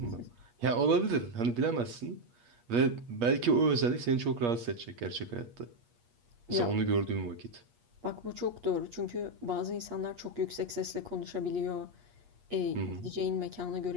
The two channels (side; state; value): left; late; 8.4 ms